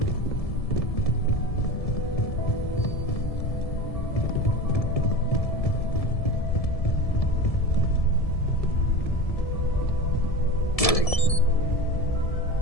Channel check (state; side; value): late; right; 1.7 ms